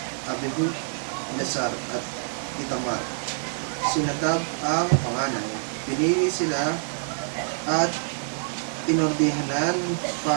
Abihu, Eleazar at Itamar. Si Nadab ang panganay. Pinili sila at inordihanan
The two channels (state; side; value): silent; left; 61 dB below the other